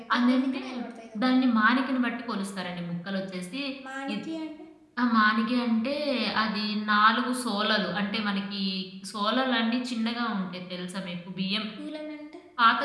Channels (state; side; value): identical; both; correlation 1.00